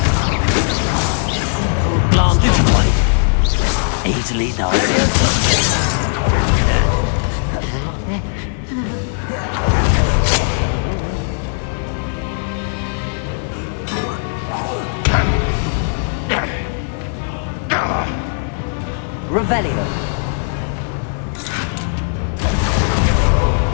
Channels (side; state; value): right; silent; digital silence